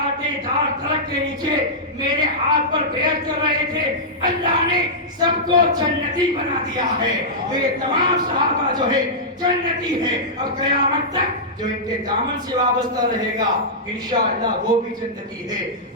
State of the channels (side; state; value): both; normal; correlation -0.12